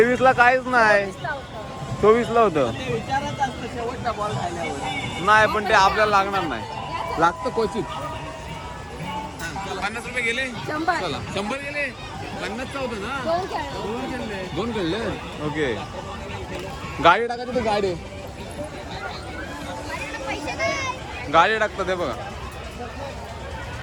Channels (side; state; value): both; identical; correlation 1.00